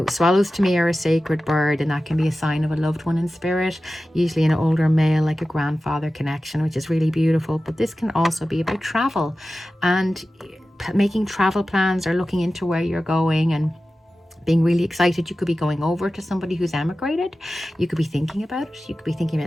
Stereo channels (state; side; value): normal; both; correlation 0.95